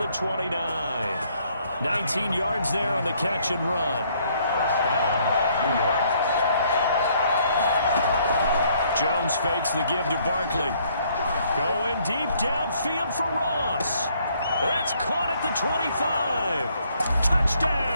29. 19 yards there on the catch and run. 1st down, New York. Jones fakes the give to Barkley. Going deep downfield for Ross. That's caught at the 25.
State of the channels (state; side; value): inverted; both; correlation -0.66